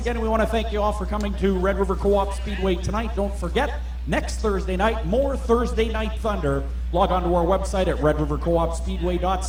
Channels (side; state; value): both; identical; correlation 1.00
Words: we want to thank you all for coming to Red River Co-op Speedway tonight. Don't forget, next Thursday night, more Thursday Night Thunder. Log on to our website at